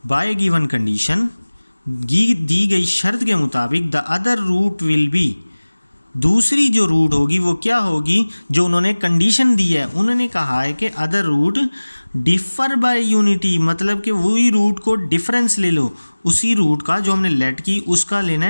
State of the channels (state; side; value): inverted; both; correlation -1.00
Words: बाय गिवन कंडीशन, दी गई शर्त के मुताबिक, the other root will be, दूसरी जो रूट होगी वो क्या होगी? जो उन्होंने कंडीशन दी है, उन्होंने कहा है कि other root differ by unity, मतलब कि वही रूट को डिफरेंस ले लो। उसी रूट का जो हमने लेट की उसका लेना